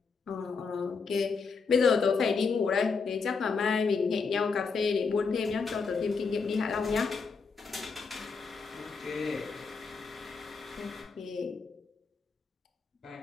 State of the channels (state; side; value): quieter; right; 5.0 dB